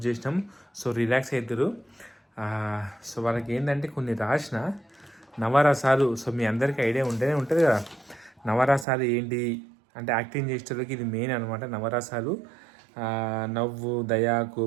చేసినాం. సో రిలాక్స్ అవుతారు. సో వాళ్ళకి ఏంటంటే కొన్ని రాసిన నవరసాలు. సో మీ అందరికీ ఐడియా ఉంటేనే ఉంటుంది కదా, నవరసాలు ఏంటి అంటే యాక్టింగ్ చేసేటోళ్ళకి ఇది మెయిన్ అనమాట. నవరసాలు నవ్వు, దయ,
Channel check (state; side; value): drops out; left; at 8.8 s